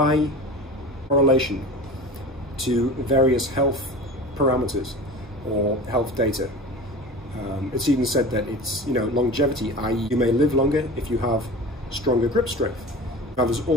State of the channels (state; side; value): normal; both; correlation 0.35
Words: correlation to various health parameters or health data. It's even said that it's, longevity, i.e. you may live longer if you have stronger grip strength. Now, there's